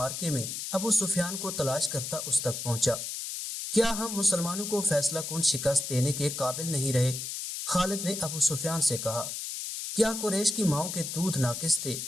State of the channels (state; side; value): noise; left; hiss, 5 dB below the sound